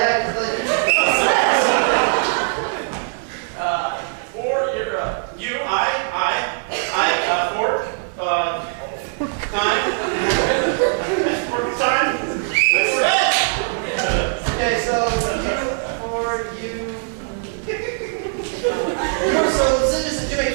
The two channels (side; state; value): left; silent; 65 dB below the other